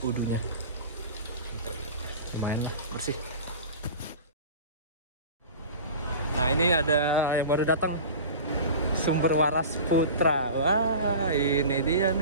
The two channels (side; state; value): both; inverted; correlation -0.36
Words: wudhunya. Lumayan bersih. Nah, ini ada yang baru datang, Sumber Waras Putra. Wah, ini dia